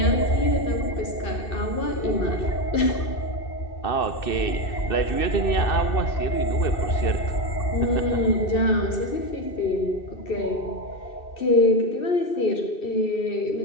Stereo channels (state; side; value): late; right; 2.6 ms